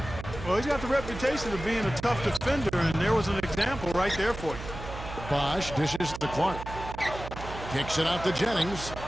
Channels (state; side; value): noise; right; hum, 10 dB below the sound